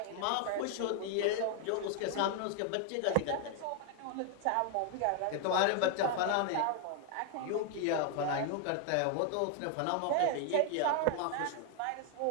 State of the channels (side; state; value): both; different; correlation 0.00